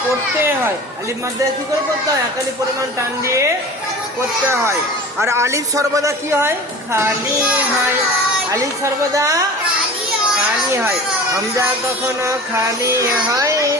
পড়তে হয়। আলিফ মাদ্দা কি করে পড়তে হয়? এক আলিফ পরিমাণ টান দিয়ে পড়তে হয়। আর আলিফ সর্বদা কি হয়? খালি হয়। আলিফ সর্বদা খালি হয়। হামজা কখনো খালি হয়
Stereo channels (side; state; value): both; normal; correlation 0.38